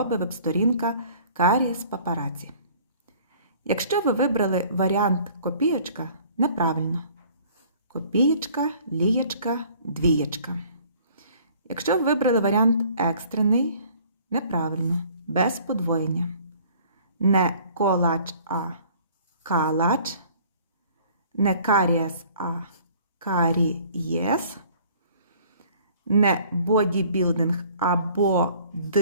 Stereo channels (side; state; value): both; inverted; correlation -0.54